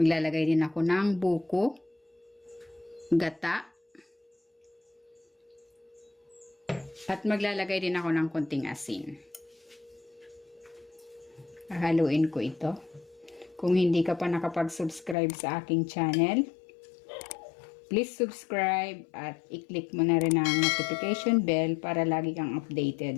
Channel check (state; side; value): drops out; right; at 15.2 s